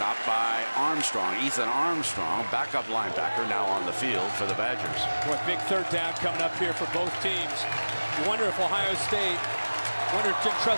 by Armstrong, Ethan Armstrong, backup linebacker, now on the field for the Badgers. Boy, big third down coming up here for both teams. You wonder if Ohio State, wonder if Jim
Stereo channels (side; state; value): both; inverted; correlation -1.00